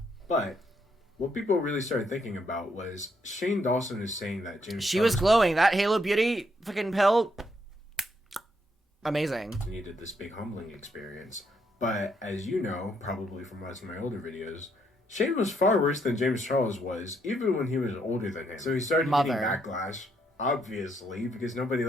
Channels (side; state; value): both; normal; correlation 0.74